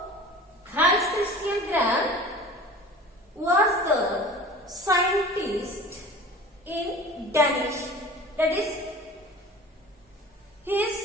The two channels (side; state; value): both; normal; correlation 0.40